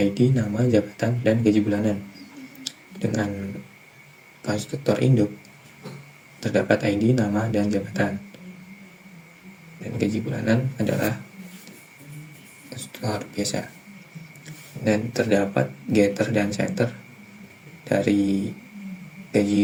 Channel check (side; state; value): both; identical; correlation 1.00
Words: nama, jabatan, dan gaji bulanan. Dengan konstruktor induk terdapat ID, nama, dan jabatan, dan gaji bulanan adalah konstruktor biasa. Dan terdapat getter dan setter dari